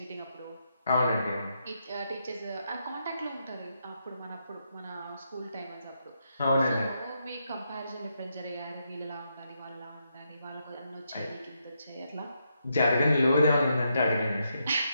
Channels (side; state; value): both; inverted; correlation -0.81